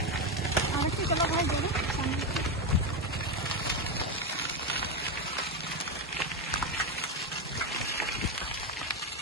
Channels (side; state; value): both; normal; correlation 0.11